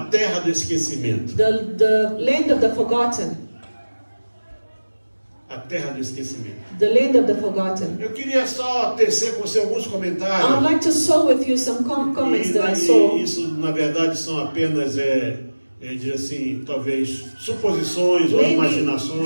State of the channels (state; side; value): inverted; both; correlation -1.00